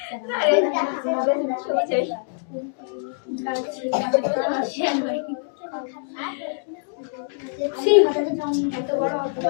এত বড় অত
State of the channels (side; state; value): right; silent; digital silence